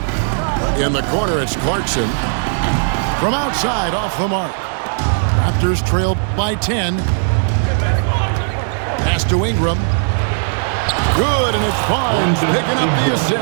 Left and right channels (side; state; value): left; silent; digital silence